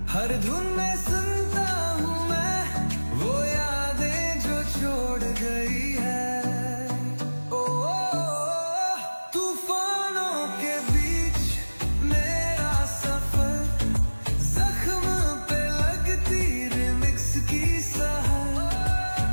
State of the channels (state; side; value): inverted; both; correlation -1.00